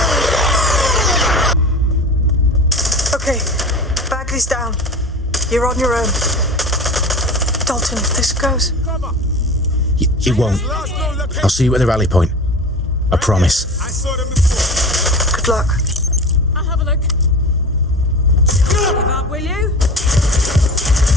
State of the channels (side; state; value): both; normal; correlation 0.34